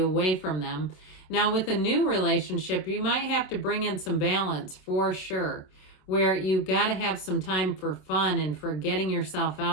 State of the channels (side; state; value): right; late; 27 ms